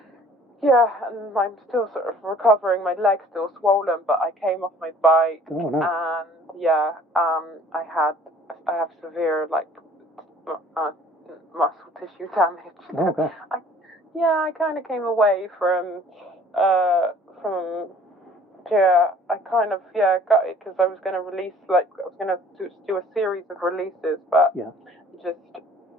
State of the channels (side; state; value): both; normal; correlation 0.53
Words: Yeah, and I'm still sort of recovering. My leg's still swollen, but I came off my bike. Oh, no. And I have severe muscle tissue damage. Oh, gosh. I kind of came away from I kind of got it because I was going to release I was going to do a series of releases, but